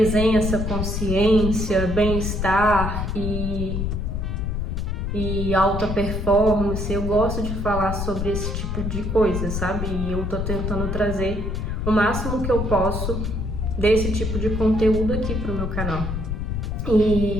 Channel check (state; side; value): noise; left; rumble, 2 dB below the sound